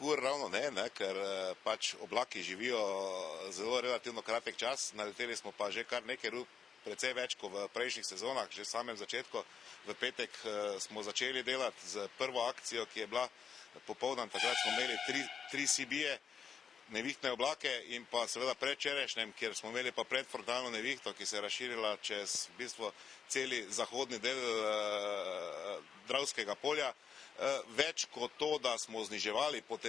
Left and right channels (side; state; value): right; quieter; 6.8 dB